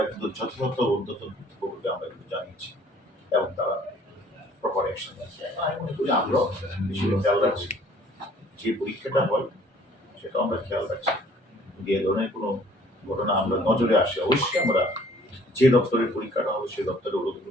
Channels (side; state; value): both; normal; correlation 0.56